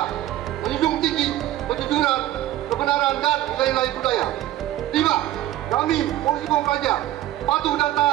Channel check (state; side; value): quieter; left; 14.1 dB